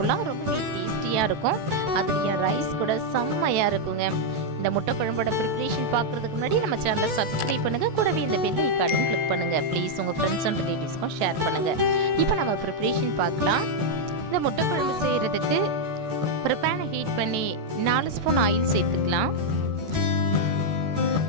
ரொம்பவே டேஸ்டியாக இருக்கும். அதுலேயும் ரைஸ் கூட செம்மையாக இருக்குங்க. இந்த முட்டை குழம்போட ப்ரிப்பரேஷன் பார்க்குறதுக்கு முன்னாடி நம்ம சேனலை சப்ஸ்கிரைப் பண்ணுங்கள். கூடவே இந்த பெல் ஐக்கானையும் கிளிக் பண்ணுங்கள். ப்ளீஸ் உங்கள் ஃப்ரெண்ட்ஸ் அண்ட் ரிலேட்டிவ்ஸ்க்கும் ஷேர் பண்ணுங்கள். இப்போ நம்ம ப்ரிப்பரேஷன் பார்க்கலாம். இந்த முட்டை குழம்பு செய்கிறதுக்கு ஒரு பேனை ஹீட் பண்ணி 4 ஸ்பூன் ஆயில் சேர்த்துக்கலாம்.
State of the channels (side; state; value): left; late; 14 ms